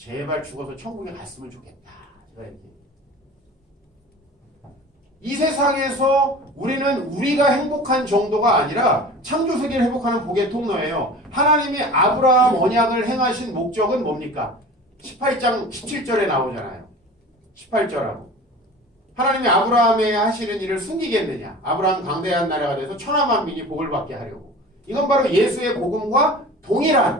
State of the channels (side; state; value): both; normal; correlation 0.39